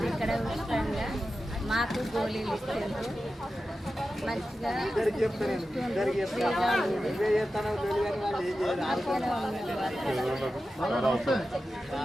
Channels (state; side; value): normal; both; correlation 0.92